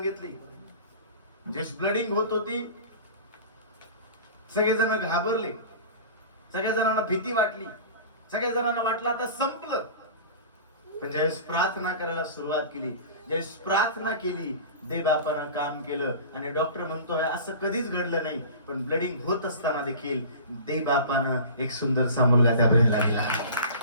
जे ब्लडिंग होत होती, सगळेजण घाबरले, सगळ्या जणांना भीती वाटली, सगळ्या जणांना वाटलं आता संपलं. पण ज्यावेळेस प्रार्थना करायला सुरुवात केली, ज्यावेळेस प्रार्थना केली, देवबापानं काम केलं आणि डॉक्टर म्हणतोय असं कधीच घडलं नाही, पण ब्लडिंग होत असताना देखील देवबापानं एक सुंदरसा मुलगा त्या बहिणीला दिला.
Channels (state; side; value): inverted; both; correlation -0.38